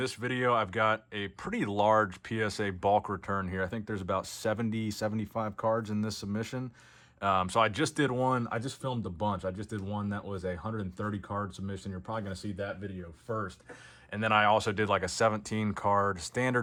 video, I've got a pretty large PSA bulk return here. I think there's about 70, 75 cards in this submission. So I just did one. I just filmed a bunch. I just did one that was a 130 card submission. You're probably going to see that video first. And then I also did like a 17 card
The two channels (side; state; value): both; identical; correlation 1.00